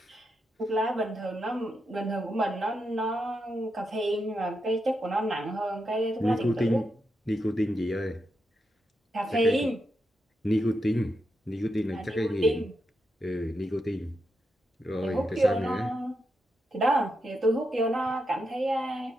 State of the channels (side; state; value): both; normal; correlation 0.85